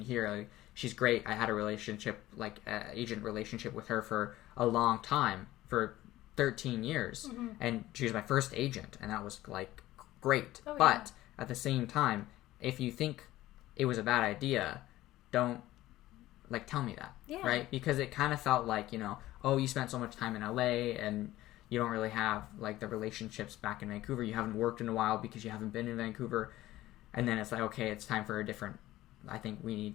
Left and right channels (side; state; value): right; quieter; 15.9 dB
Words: here. Like, she's great. I had a agent relationship with her for a long time, for 13 years. And she was my first agent, and that was, like, great. Oh, but at the same time, if you think it was a bad idea, don't, like, tell me that. Yeah. Right? Because it kind of felt like, oh, you spent so much time in LA and you don't really have like the relationships back in Vancouver. You haven't worked in a while because you haven't been in Vancouver. And then it's like, okay, it's time for a different, I think we